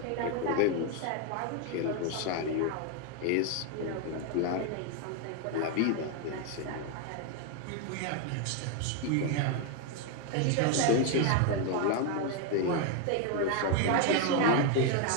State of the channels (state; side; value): different; both; correlation 0.01